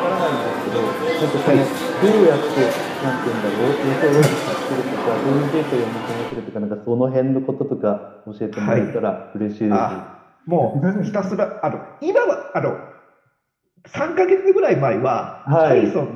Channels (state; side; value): identical; both; correlation 1.00